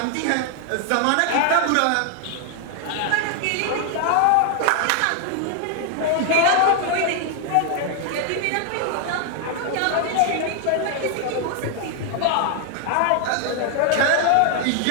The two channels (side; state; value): both; different; correlation 0.00